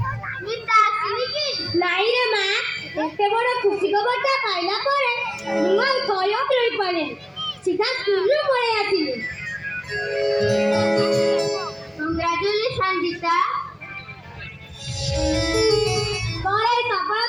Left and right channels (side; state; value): both; identical; correlation 1.00